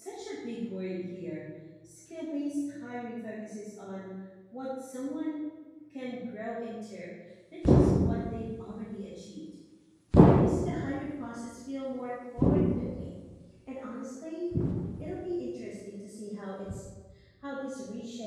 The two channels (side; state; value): both; identical; correlation 1.00